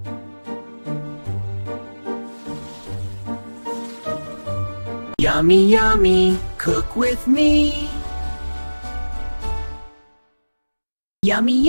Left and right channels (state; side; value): inverted; both; correlation -1.00